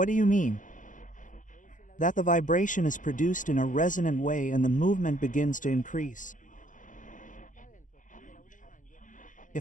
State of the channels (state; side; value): late; right; 0.37 ms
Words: do you mean? That the vibration is produced in a resonant way and the movement begins to increase.